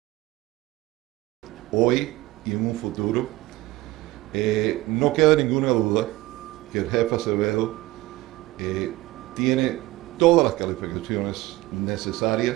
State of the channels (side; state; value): left; quieter; 18.4 dB